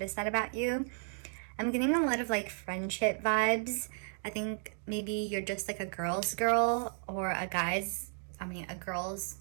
that about you. I'm getting a lot of like friendship vibes. I think maybe you're just like a girl's girl or a girl's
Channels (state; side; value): silent; left; 55 dB below the other